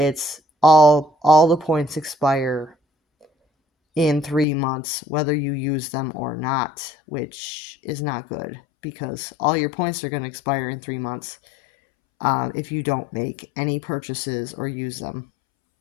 all the points expire in 3 months, whether you use them or not, which is not good because all your points are going to expire in 3 months if you don't make any purchases or use them.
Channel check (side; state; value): right; drops out; at 4.5 s